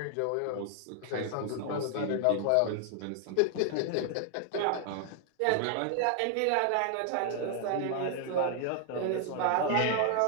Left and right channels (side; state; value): both; different; correlation 0.00